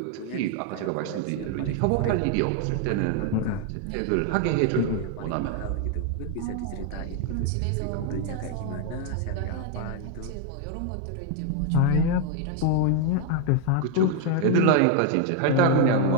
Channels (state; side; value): different; both; correlation 0.01